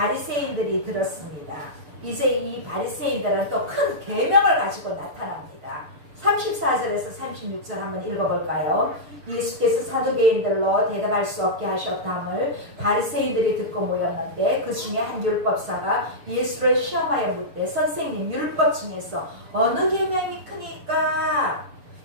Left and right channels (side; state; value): left; late; 6.8 ms